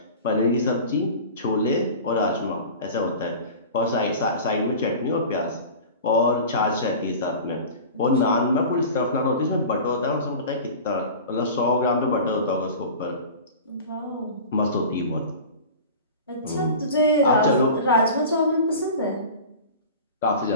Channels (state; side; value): inverted; both; correlation -0.36